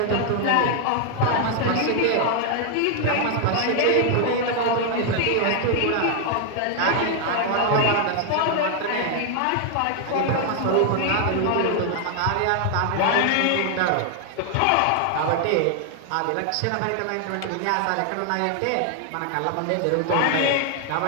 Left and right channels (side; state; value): both; different; correlation 0.00